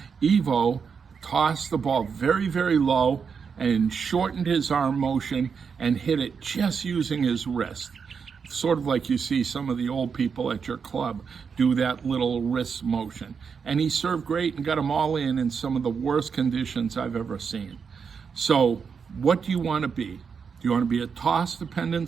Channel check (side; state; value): left; quieter; 6.1 dB